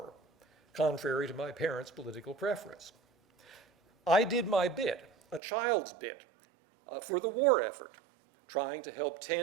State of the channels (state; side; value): drops out; left; at 5.4 s